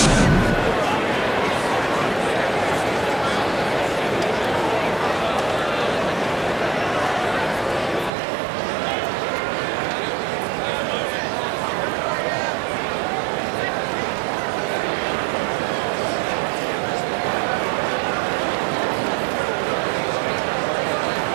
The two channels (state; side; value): drops out; left; at 8.1 s